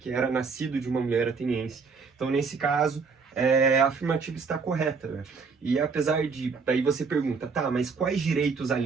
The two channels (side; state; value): left; quieter; 5.0 dB